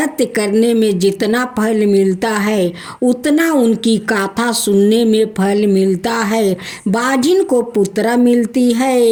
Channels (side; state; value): both; identical; correlation 1.00